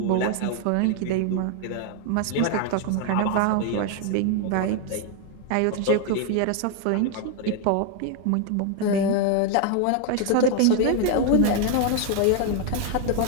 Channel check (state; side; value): different; both; correlation 0.01